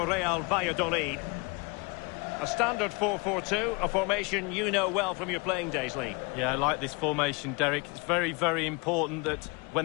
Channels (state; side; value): quieter; right; 29.1 dB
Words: Real Valladolid. A standard 4-4-2, a formation you know well from your playing days, Lee. Yeah, I like this formation, Derek. It's very, very important that